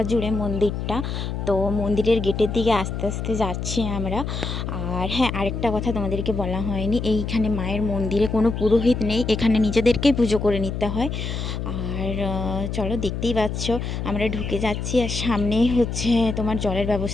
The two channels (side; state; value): left; noise; hum, 4 dB below the sound